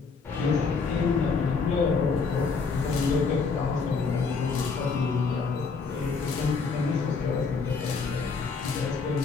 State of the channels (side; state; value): right; quieter; 4.9 dB